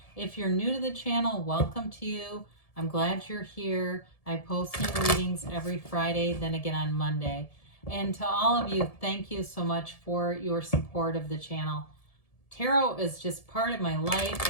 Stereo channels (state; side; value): late; right; 1.7 ms